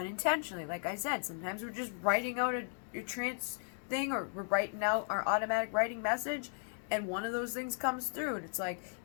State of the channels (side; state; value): right; silent; 54 dB below the other